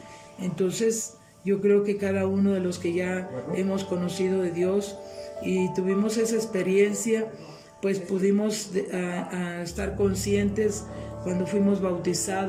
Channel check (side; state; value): both; identical; correlation 1.00